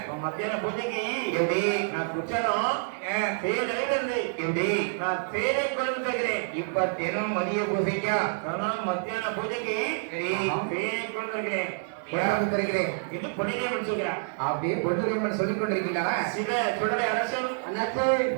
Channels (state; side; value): silent; left; digital silence